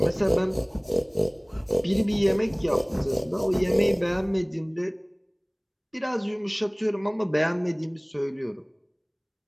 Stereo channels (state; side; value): identical; both; correlation 1.00